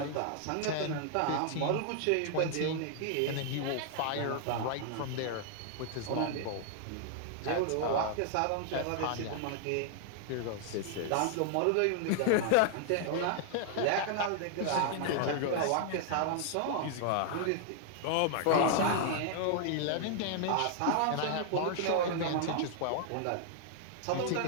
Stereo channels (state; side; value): different; both; correlation 0.00